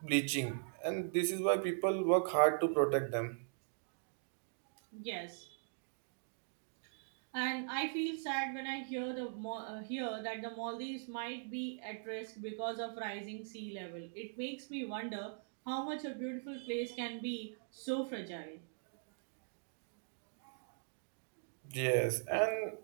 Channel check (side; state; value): left; silent; digital silence